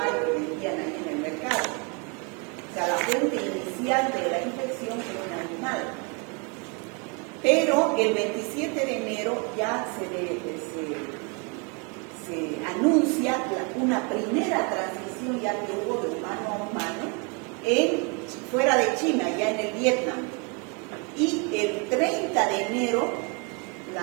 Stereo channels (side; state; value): left; quieter; 32.5 dB